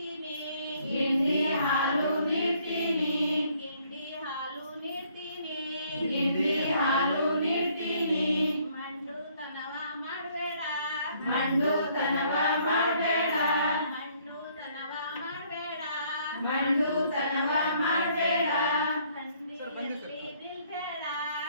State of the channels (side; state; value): both; inverted; correlation -0.64